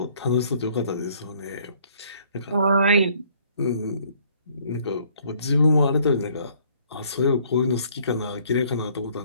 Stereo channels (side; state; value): both; inverted; correlation -0.62